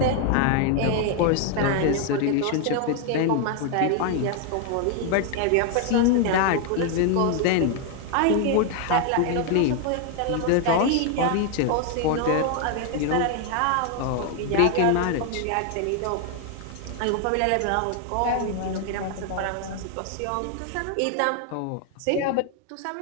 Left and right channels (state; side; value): different; both; correlation 0.00